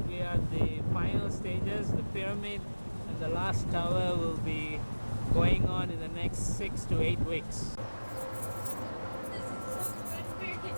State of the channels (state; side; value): inverted; both; correlation -1.00